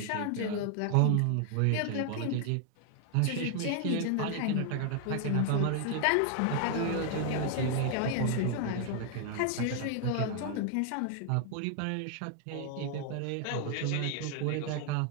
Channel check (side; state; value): both; different; correlation 0.00